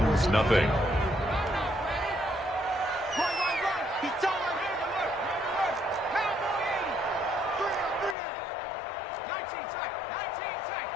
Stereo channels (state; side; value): drops out; right; at 8.2 s